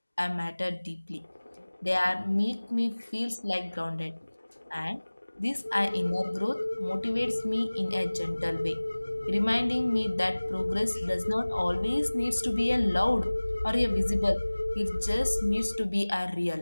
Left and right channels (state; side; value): inverted; both; correlation -1.00